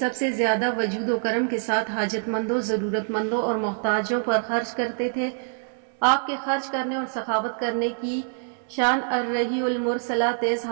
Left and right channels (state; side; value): silent; left; 62 dB below the other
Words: سے زیادہ وجود و کرم کے ساتھ حاجت مندوں، ضرورت مندوں اور محتاجوں پر خرچ کرتے تھے۔ آپ کے خرچ کرنے اور سخاوت کرنے کی شان الرحی المرسلہ تیز